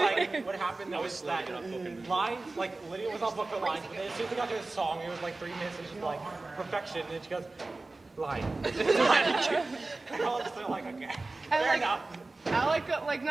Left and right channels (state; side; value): quieter; left; 3.3 dB